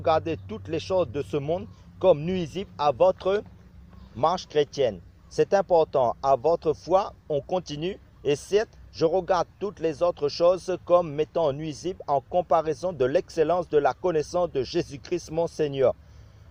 toutes les choses de ce monde comme nuisibles à votre marche chrétienne. C'est important. À votre foi, on continue. Et certes, je regarde toutes les autres choses comme m'étant nuisibles en comparaison de l'excellence de la connaissance de Jésus-Christ mon Seigneur,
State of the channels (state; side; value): identical; both; correlation 1.00